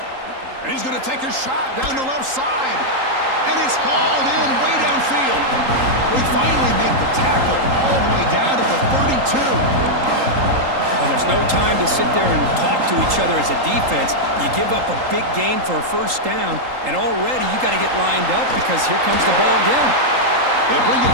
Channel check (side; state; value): left; late; 3.8 ms